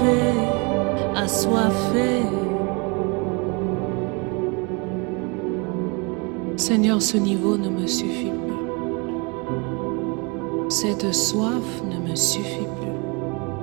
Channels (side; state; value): left; quieter; 30.8 dB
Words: assoiffé. Seigneur, ce niveau ne me suffit plus. Cette soif ne me suffit plus.